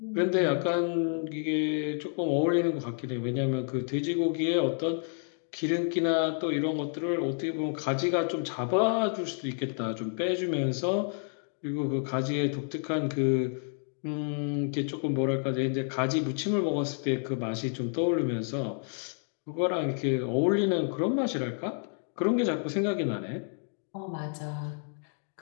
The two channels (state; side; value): silent; right; 58 dB below the other